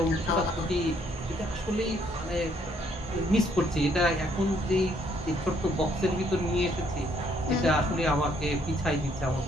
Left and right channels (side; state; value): both; normal; correlation 0.68